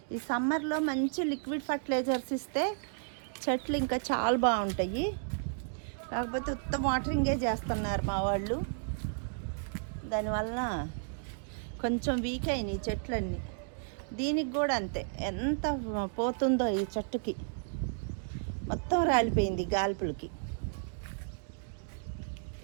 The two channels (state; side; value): silent; left; digital silence